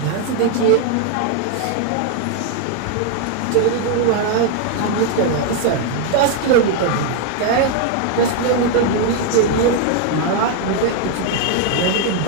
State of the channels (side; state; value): both; different; correlation 0.00